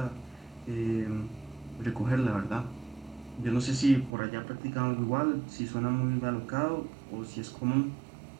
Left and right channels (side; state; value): left; drops out; at 4.1 s